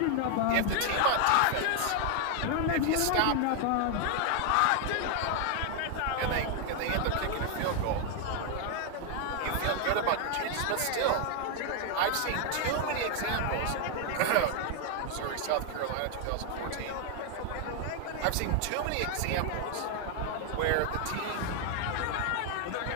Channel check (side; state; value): both; different; correlation 0.00